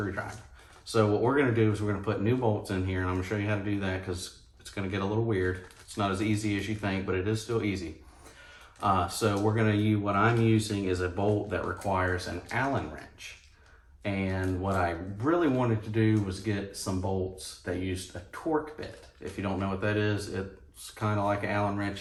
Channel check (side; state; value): both; identical; correlation 1.00